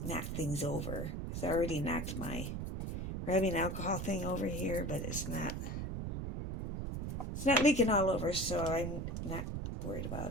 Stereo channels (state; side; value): noise; right; rumble, 4 dB below the sound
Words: knock things over. Because I already knocked my rubbing alcohol thing over here, but it's not leaking all over, so I'm not worried